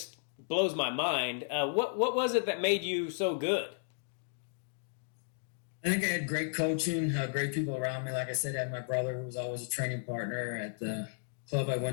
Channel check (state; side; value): silent; right; digital silence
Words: blows my mind. What was it that made you so good? I think I had great coaching, great people around me. Like I said, I had my brother who was always a training partner at the club I